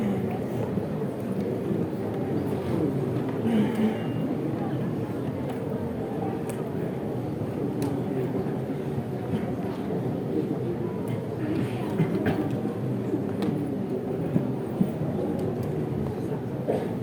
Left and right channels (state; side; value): identical; both; correlation 1.00